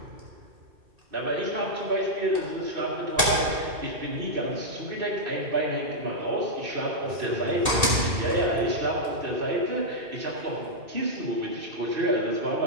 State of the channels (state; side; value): late; left; 2.5 ms